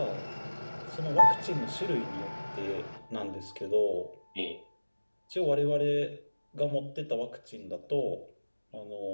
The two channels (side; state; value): both; inverted; correlation -1.00